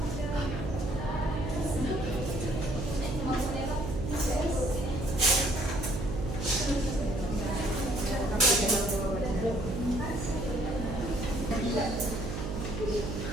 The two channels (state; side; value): noise; right; hum, 4 dB below the sound